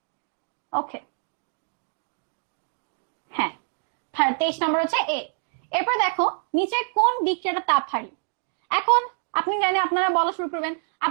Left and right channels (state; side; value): silent; left; digital silence